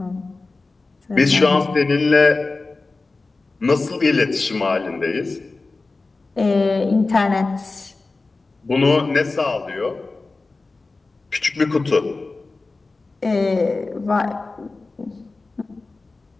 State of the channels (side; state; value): right; quieter; 3.6 dB